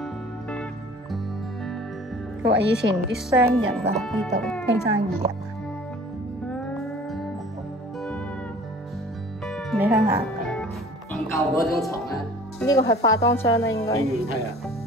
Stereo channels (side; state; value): both; normal; correlation 0.47